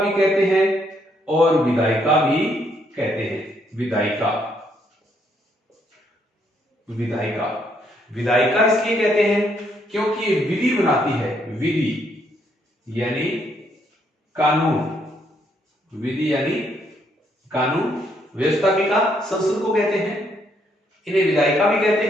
कहते हैं और विधायिका भी कहते हैं। विधायिका विधायिका विधायिका इसलिए कहते हैं क्योंकि ये विधि बनाती है। विधि यानी कानून, विधि यानी कानून। व्यवस्थापिका संसद को कहते हैं, इन्हें विधायिका भी कहते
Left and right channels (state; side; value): normal; both; correlation 0.72